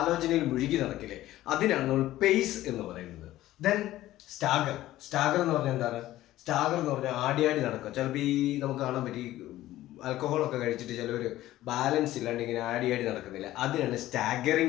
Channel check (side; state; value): right; quieter; 15.0 dB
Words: മുഴുകി നടക്കില്ലേ, അതിനാണ് നമ്മൾ പേയ്സ് എന്ന് പറയുന്നത്. Then stagger. സ്റ്റാഗർ എന്ന് പറഞ്ഞാൽ എന്താണ്? സ്റ്റാഗർ എന്ന് പറഞ്ഞാൽ ആടി നടക്കുക. ചിലപ്പോൾ ഈ നമുക്ക് കാണാൻ പറ്റി ആൽക്കഹോളൊക്കെ കഴിച്ചിട്ട് ചിലവർ ബാലൻസ് ഇല്ലാണ്ട് ഇങ്ങനെ ആടി നടക്കുന്നില്ല, അതിനാണ്